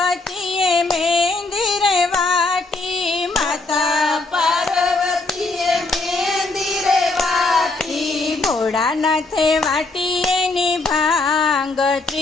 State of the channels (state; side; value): quieter; right; 3.3 dB